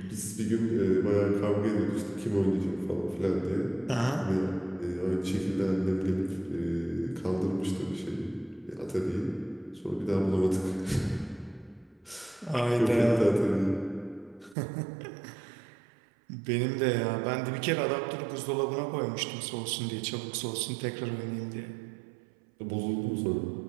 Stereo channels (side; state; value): left; drops out; at 14.6 s